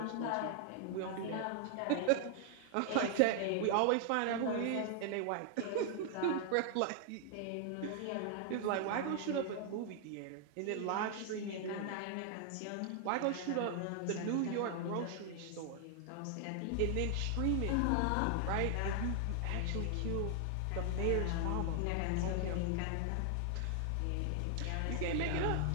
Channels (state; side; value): different; both; correlation 0.00